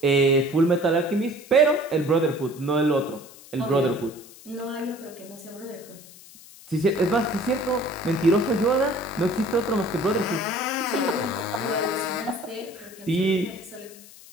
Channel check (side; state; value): left; noise; hiss, 20 dB below the sound